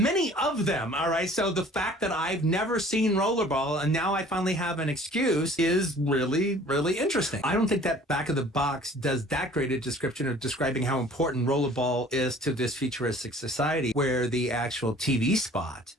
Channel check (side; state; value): both; normal; correlation 0.51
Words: of them, all right? So the fact that I've never seen Rollerball and now I finally have an excuse is really, really interesting. I don't think that back of the box does that great a description of describing how important Rollerball is to this futuristic society, where the actual TV spot